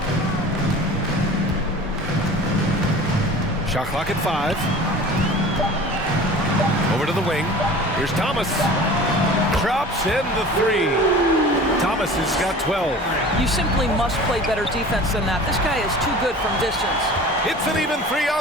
Shot clock at 5. Over to the wing. Here's Thomas. Drops in the 3. Thomas has got 12. You simply must play better defense than that. This guy is too good from distance. It's an even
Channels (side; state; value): both; normal; correlation 0.41